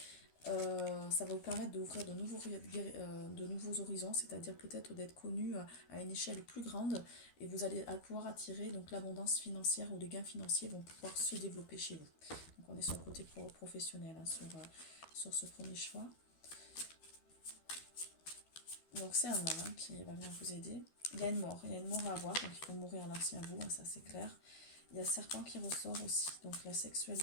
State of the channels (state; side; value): late; right; 12 ms